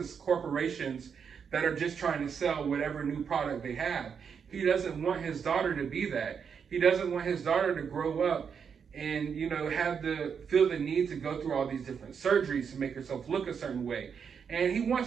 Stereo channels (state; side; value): quieter; left; 6.8 dB